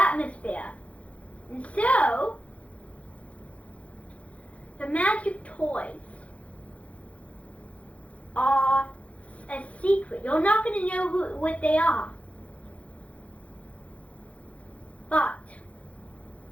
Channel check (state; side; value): late; right; 0.064 ms